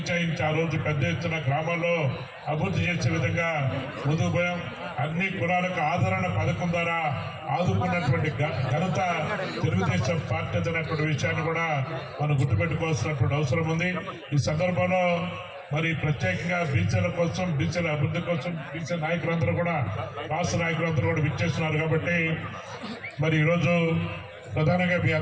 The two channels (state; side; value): identical; both; correlation 1.00